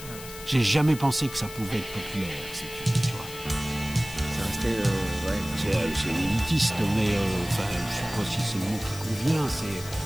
J'ai jamais pensé que ça pouvait être populaire, tu vois. Ça restait, c'est élitiste, mais enfin, je sais pas si c'est le mot qui convient.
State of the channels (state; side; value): noise; left; hiss, 13 dB below the sound